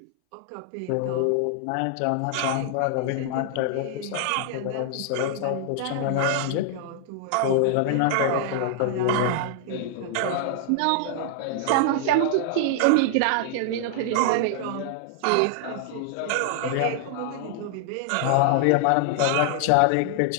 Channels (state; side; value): different; both; correlation 0.00